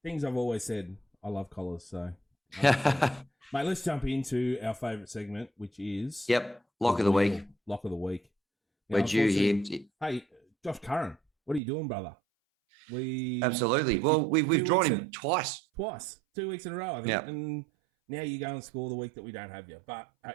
Things I've always said. I love collars. So mate, let's jump into our favourite segment, which is lock of the week. Lock of the week. Now, we're due here. Hey, Josh Curran, what are you doing, brother? Absolutely. Well, we've drawn him twice. 2 weeks in a row, I think. Yep. And now you go and score the week that we don't have you. But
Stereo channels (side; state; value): left; drops out; at 11.6 s